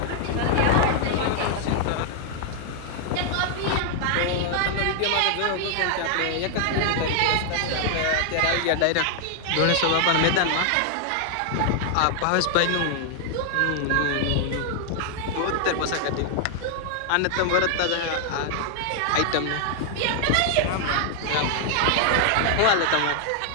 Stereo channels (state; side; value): different; both; correlation 0.00